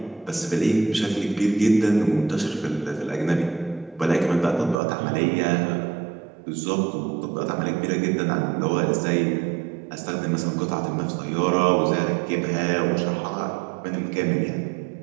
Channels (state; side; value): drops out; left; at 4.8 s